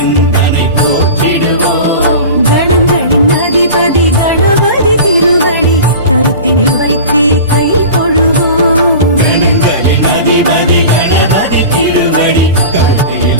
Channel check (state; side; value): inverted; both; correlation -0.34